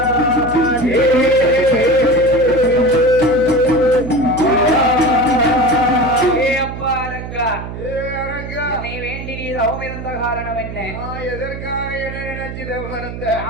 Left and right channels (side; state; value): right; noise; hum, 9 dB below the sound